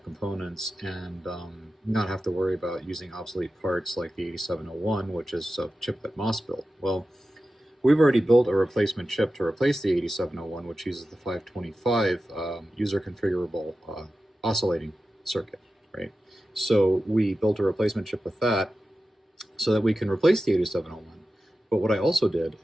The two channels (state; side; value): normal; both; correlation 0.93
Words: components and not have to worry about using obsolete parts like the 8701, which is a chip that MOS built. Well, we've already built a replacement chip to replace the 8701, which uses the 525 user configurable oscillating circuit, right? So we built a replacement chip with that so that we can replace the 8701. But what I also did